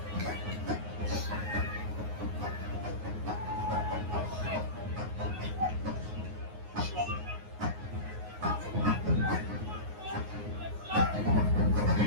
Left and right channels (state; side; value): late; left; 9.5 ms